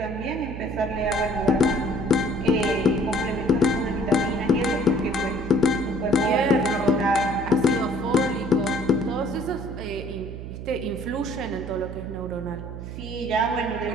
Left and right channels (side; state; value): right; noise; hum, 9 dB below the sound